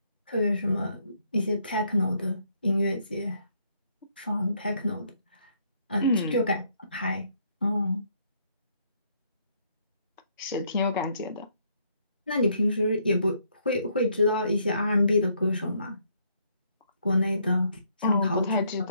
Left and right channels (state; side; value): inverted; both; correlation -0.71